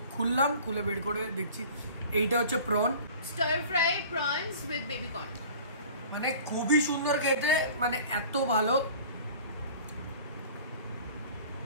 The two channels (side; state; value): both; inverted; correlation -0.44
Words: খুললাম, খুলে বের করে দেখছি এইটা হচ্ছে prawn, star fry prawns with baby corn, মানে খুবই সুন্দর খেতে, মানে এত ভালো।